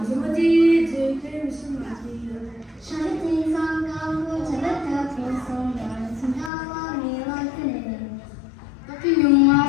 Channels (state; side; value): drops out; right; at 6.5 s